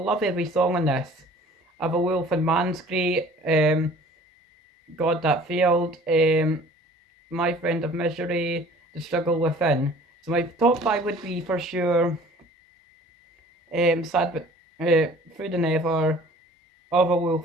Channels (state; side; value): normal; both; correlation 0.49